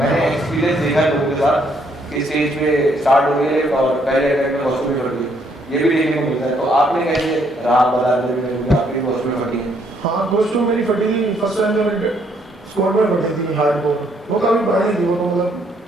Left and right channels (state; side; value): normal; both; correlation 0.70